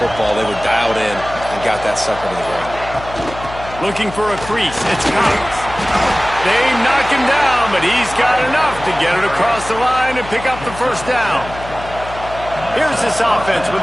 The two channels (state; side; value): noise; left; hum, 14 dB below the sound